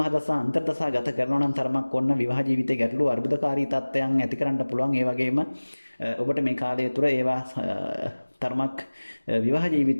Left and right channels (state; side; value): inverted; both; correlation -1.00